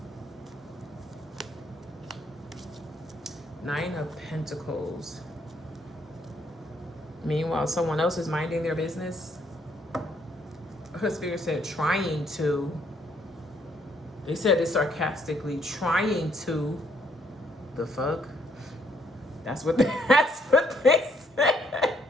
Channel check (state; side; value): normal; both; correlation 0.69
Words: Nine of Pentacles. Meanwhile, someone else is minding their business. Her spirit said trying to. They said it sarcastically, trying to. The fuck? That's what they said.